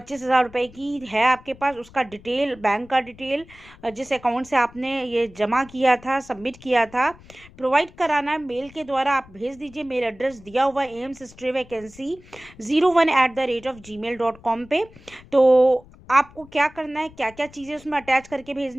रुपये की है आपके पास, उसका डिटेल, बैंक का डिटेल, जिस अकाउंट से आपने ये जमा किया था, सबमिट किया था, प्रोवाइड कराना है। मेल के द्वारा आप भेज दीजिए। मेल एड्रेस दिया हुआ एम्स स्टे वैकेंसी 01@gmail.com पे। तो आपको क्या करना है, क्या क्या चीज़ें उसमें अटैच करके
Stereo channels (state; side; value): noise; left; rumble, 23 dB below the sound